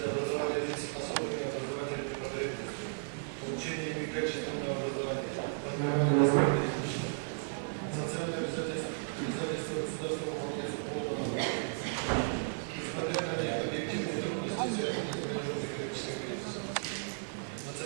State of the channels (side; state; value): left; silent; digital silence